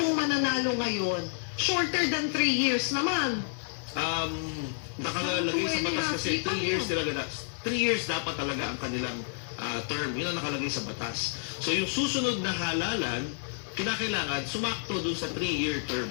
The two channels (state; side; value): silent; right; digital silence